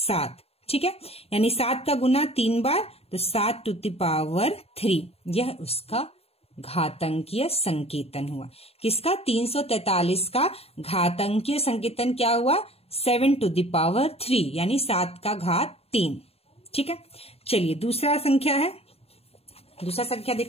ठीक है, यानी 7 का गुना 3 बार, तो 7 टू द पावर 3। यह उसका घातांकीय संकेतन हुआ। किसका? 343 का घातांकीय संकेतन क्या हुआ? 7 टू द पावर 3, यानी 7 का घात 3। ठीक है, चलिए दूसरा संख्या है। दूसरा संख्या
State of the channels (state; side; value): late; right; 0.29 ms